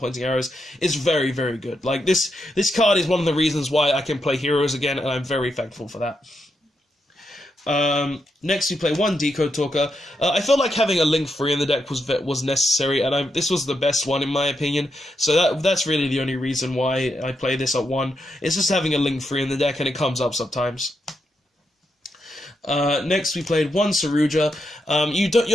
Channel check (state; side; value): normal; both; correlation 0.83